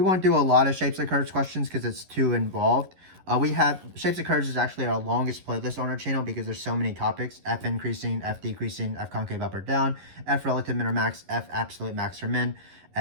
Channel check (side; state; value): left; late; 11 ms